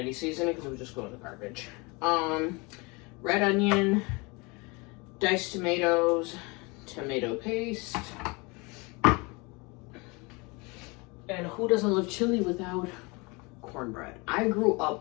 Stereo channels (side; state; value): right; quieter; 27.5 dB